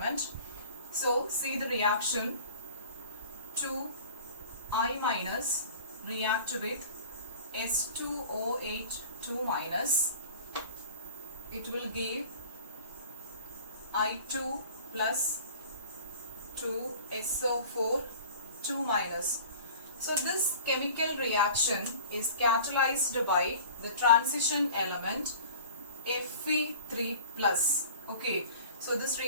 So see the reaction. 2I minus react with S2O8 2 minus. It will give I2 plus 2 SO4 2 minus. So this chemical reaction is catalyzed by the transition element Fe3 plus. Okay, so this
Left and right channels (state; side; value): inverted; both; correlation -0.43